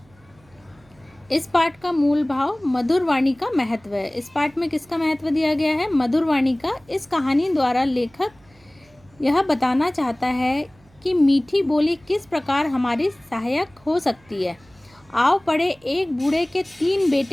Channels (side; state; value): right; noise; hum, 30 dB below the sound